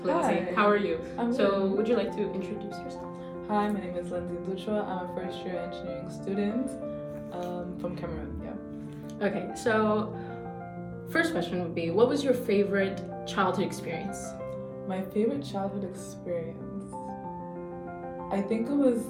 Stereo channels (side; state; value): both; identical; correlation 1.00